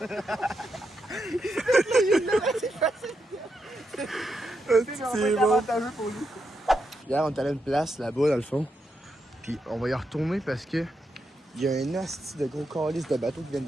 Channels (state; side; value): normal; both; correlation 0.83